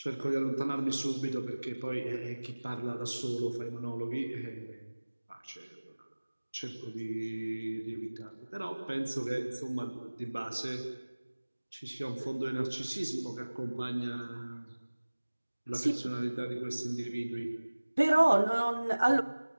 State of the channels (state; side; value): inverted; both; correlation -1.00